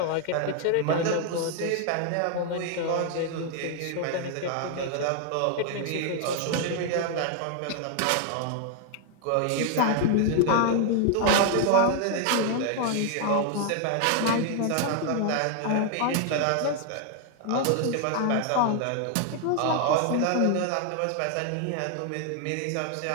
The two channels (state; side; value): different; both; correlation 0.00